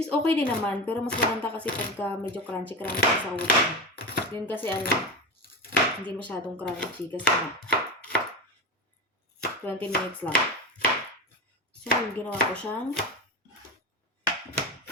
is okay din naman, pero mas maganda kasi pagka medyo crunchy sa oven. Yun kasi hindi masyadong crunchy kasi 20 minutes lang. So, ginawa ko siyang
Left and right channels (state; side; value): normal; both; correlation 0.22